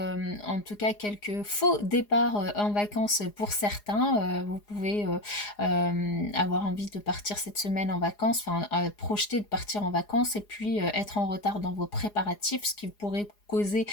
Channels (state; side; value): late; right; 4.8 ms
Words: en tout cas quelques faux départs en vacances pour certains. Vous pouvez avoir envie de partir cette semaine en vacances, enfin projeter de partir en vacances, et puis être en retard dans vos préparatifs, ce qui pourrait causer